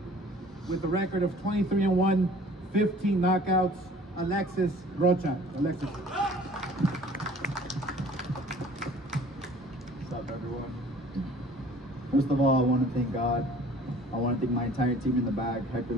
with a record of 23-1, 15 knockouts, Alexis Rocha. Alexis. What's up, everyone? First of all, I want to thank God. I want to thank my entire team in the back, Hector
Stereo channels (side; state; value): both; normal; correlation 0.50